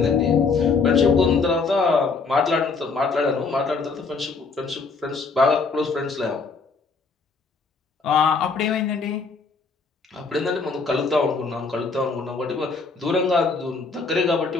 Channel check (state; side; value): quieter; right; 4.5 dB